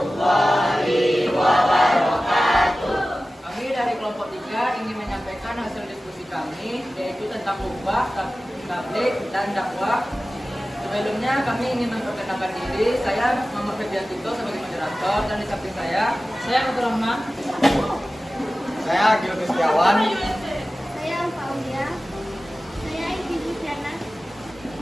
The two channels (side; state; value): both; normal; correlation 0.96